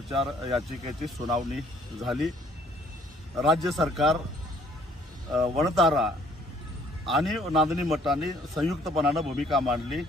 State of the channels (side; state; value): both; normal; correlation 0.60